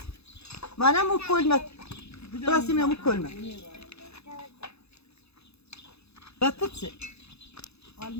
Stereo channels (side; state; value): right; late; 0.79 ms